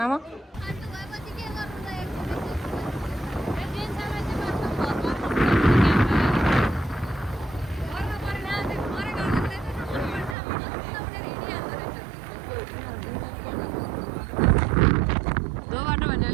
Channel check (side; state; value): left; drops out; at 10.4 s